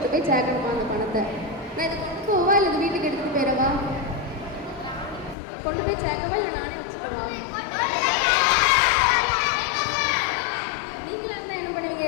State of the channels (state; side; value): drops out; right; at 5.4 s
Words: போய் சேர்க்கணுமா அந்த பணத்தை? நான் இதை கொண்டு போவா இல்லை இது வீட்டுக்கு எடுத்துகிட்டு போயிடவா? கொண்டு போய் சேர்க்கவா இல்லை நானே வச்சுக்கவா? நீங்களா என்ன பண்ணுவீங்க,